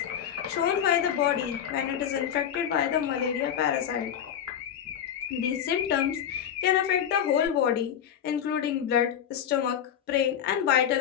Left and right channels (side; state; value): right; quieter; 9.3 dB